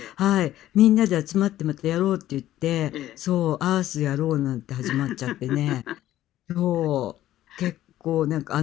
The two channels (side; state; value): right; quieter; 13.6 dB